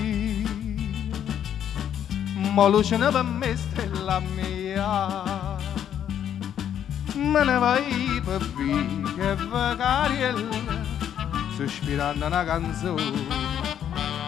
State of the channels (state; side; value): quieter; right; 9.7 dB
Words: Ma luce per me stella mia, me ne vai per via che vacariella, sospirando una canzone,